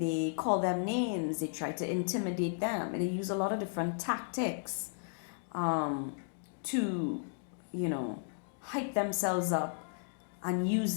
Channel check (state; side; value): silent; right; digital silence